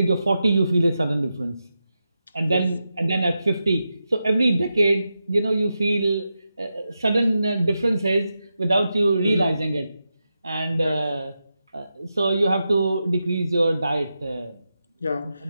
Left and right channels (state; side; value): inverted; both; correlation -0.89